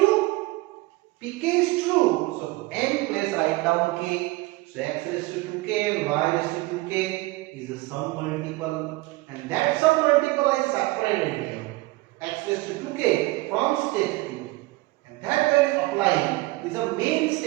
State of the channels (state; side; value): quieter; left; 21.4 dB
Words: Pk is true, so n place write down k, so x raised to 2k and y raised to 2k is a sum multiple, and that sum multiple I separated here, x raised to 2k from step 2, and that value applying is a main